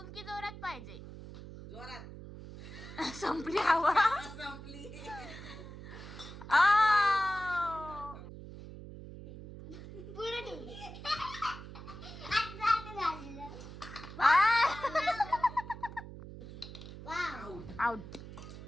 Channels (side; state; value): right; noise; hum, 13 dB below the sound